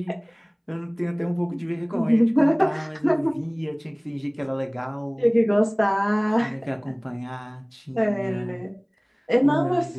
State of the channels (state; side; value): identical; both; correlation 1.00